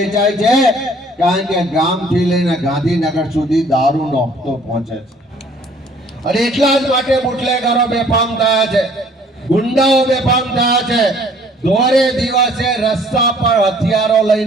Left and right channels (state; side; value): normal; both; correlation 0.57